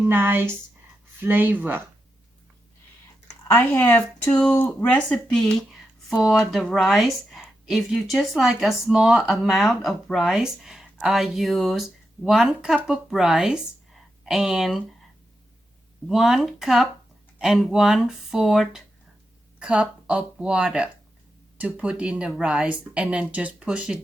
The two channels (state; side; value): normal; both; correlation 0.87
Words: flavor. I have two recipes for the rice. If you just like a small amount of rice, I use 1 cup of rice and 1 cup and 1/4 cup of water to put in the rice, and then just push it